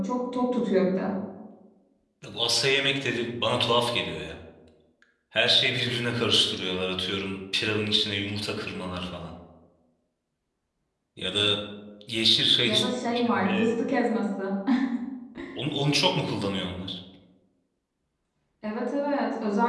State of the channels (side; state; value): both; identical; correlation 1.00